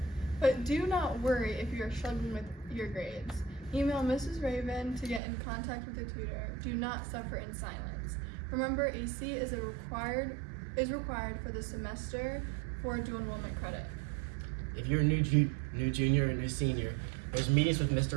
But do not worry if you are struggling with your grades. Email Mrs. Raven to get in contact with the tutor. Do not suffer in silence. Remember, AC is required for the semester for dual enrollment credit. If you're a new junior or new senior, there's meetings with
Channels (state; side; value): drops out; left; at 5.2 s